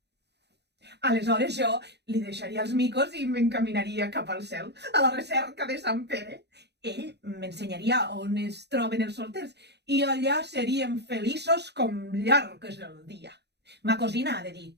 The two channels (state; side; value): late; left; 0.49 ms